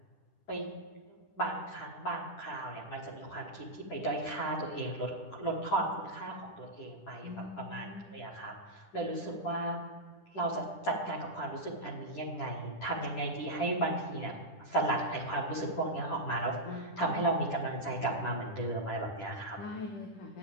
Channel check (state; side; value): late; right; 10 ms